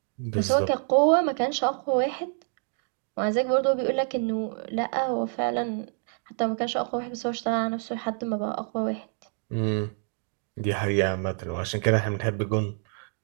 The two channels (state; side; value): silent; left; 57 dB below the other